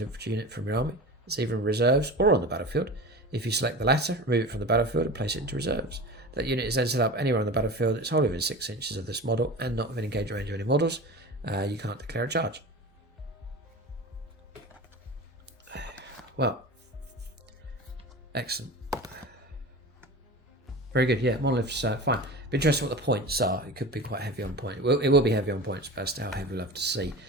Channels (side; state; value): both; normal; correlation 0.32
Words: infantry unit from your army. It's either in reserves or on the battlefield. If you select the latter, remove it from the battlefield and place it into reserves. That unit is then set up anywhere on the battlefield. It's wholly within 6 inches of this model and not within engagement range of any models. You can't declare a charge. Well, excellent. Very good. Yeah, monoliths fine. Be interesting what the points are. It could be quite heavy on point. It will be heavy on points, but as to how heavy we'll have to see.